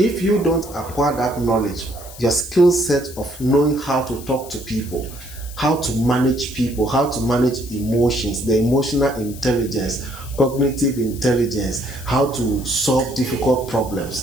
you don't acquire that knowledge, your skill set of knowing how to talk to people, how to manage people, how to manage emotions, the emotional intelligence, cognitive intelligence, how to solve difficult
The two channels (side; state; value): left; noise; hiss, 16 dB below the sound